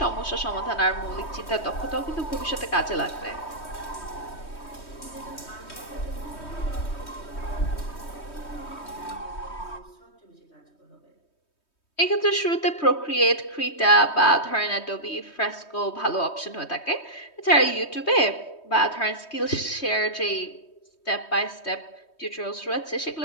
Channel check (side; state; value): right; late; 3.2 ms